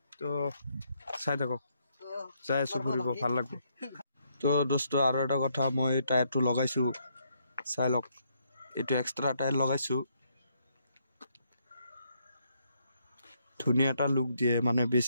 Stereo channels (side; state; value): both; inverted; correlation -0.74